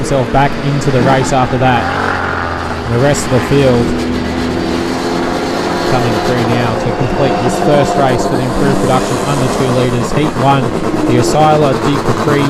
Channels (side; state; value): both; identical; correlation 1.00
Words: back into the race after that. And the rest of the field coming through now to complete this first race for the Improved Production under 2 litres. Heat 1, the Osceola de Capri